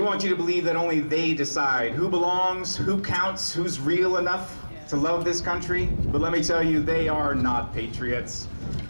you to believe that only they decide who belongs, who counts, who's real enough to love this country. But let me tell you, they are not patriots.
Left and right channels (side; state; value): both; inverted; correlation -1.00